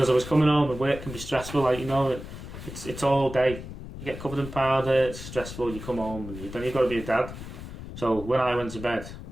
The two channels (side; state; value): left; noise; rumble, 11 dB below the sound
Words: I was coming home and work can be stressful, like, you know, it's all day. You get covered in powder, it's stressful, you come home and then you've got to be a dad. So when I went to bed,